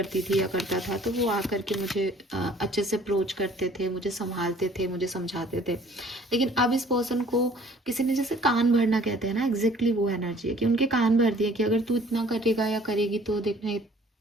थी या करता था तो वो आकर के मुझे अच्छे से अप्रोच करते थे, मुझे संभालते थे, मुझे समझाते थे। लेकिन अब इस पर्सन को किसी ने जैसे कान भरना कहते हैं ना, एग्जैक्टली वो एनर्जी है कि उनके कान भर दिए कि अगर तू इतना करेगा या करेगी तो देखना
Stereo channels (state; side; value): normal; both; correlation 0.55